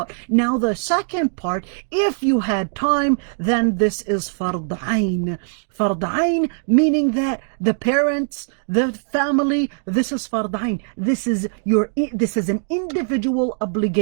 Now, the second part, if you had time, then this is fard ayn. Fard ayn, meaning that the parents, the family, this is fard ayn. This is an individual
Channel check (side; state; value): left; silent; 65 dB below the other